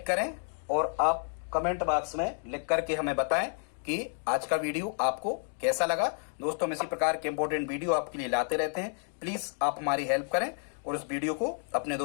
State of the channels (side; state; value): right; silent; 55 dB below the other